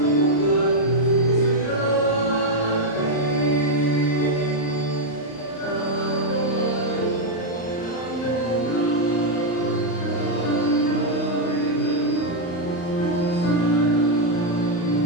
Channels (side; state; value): right; late; 35 ms